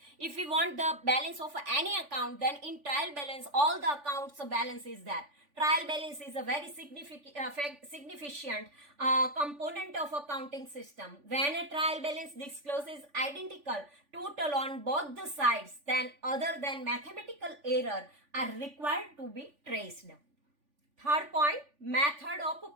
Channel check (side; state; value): left; late; 3.5 ms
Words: If we want the balance of any account, then in trial balance, all the accounts balance is there. Trial balance is a very significant component of accounting system. When a trial balance discloses identical total on both the sides, then other than mathematical error are required to be traced. Third point, method of